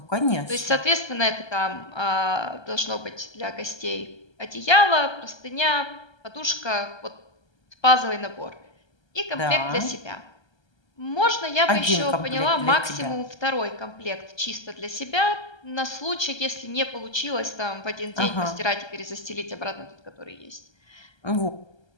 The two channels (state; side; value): late; right; 1.3 ms